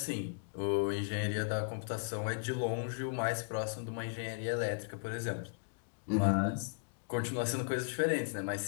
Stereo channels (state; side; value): silent; right; digital silence